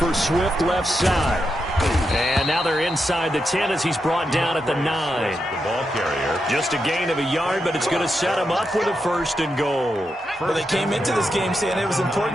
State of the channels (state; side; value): normal; both; correlation 0.85